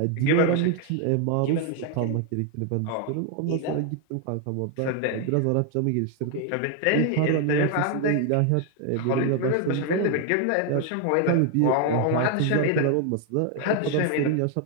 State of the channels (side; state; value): both; different; correlation 0.01